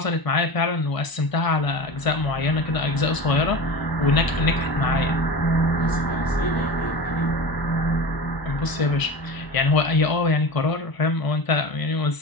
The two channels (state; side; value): late; right; 1.0 ms